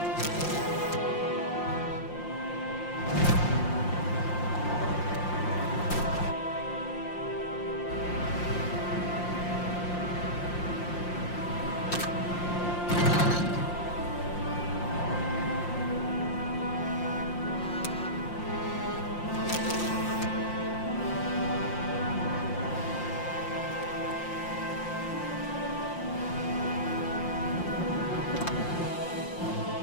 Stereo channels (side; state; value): right; late; 5.7 ms